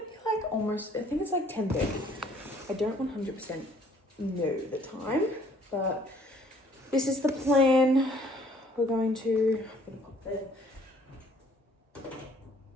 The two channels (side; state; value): both; normal; correlation 0.60